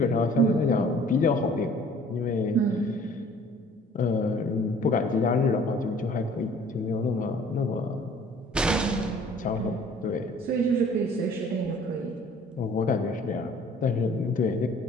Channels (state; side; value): normal; both; correlation 0.52